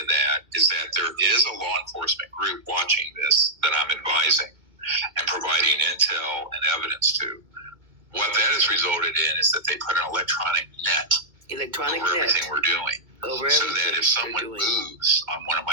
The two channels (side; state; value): left; late; 2.2 ms